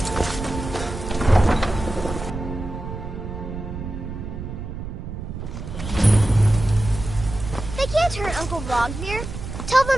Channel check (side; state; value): right; noise; rumble, 8 dB below the sound